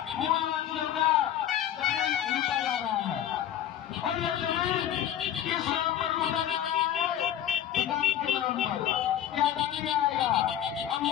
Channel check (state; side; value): quieter; right; 11.2 dB